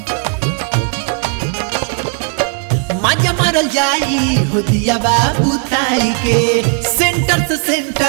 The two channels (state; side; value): quieter; left; 38.6 dB